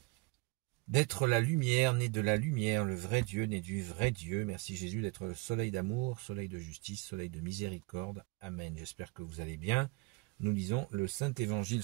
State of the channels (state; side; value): quieter; left; 24.4 dB